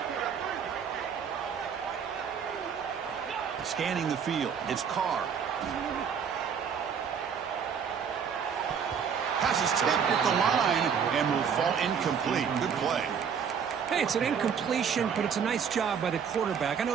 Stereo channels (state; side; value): quieter; left; 7.1 dB